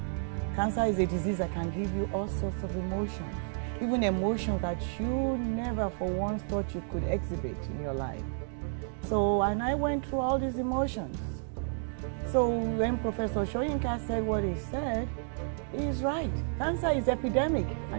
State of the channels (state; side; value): silent; left; 57 dB below the other